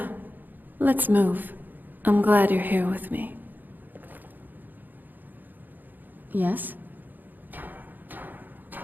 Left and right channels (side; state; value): left; late; 0.087 ms